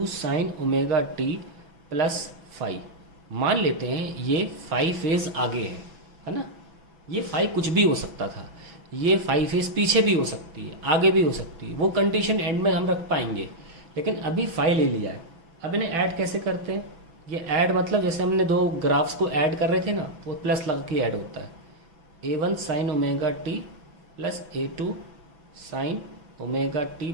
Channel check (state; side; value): late; left; 6.1 ms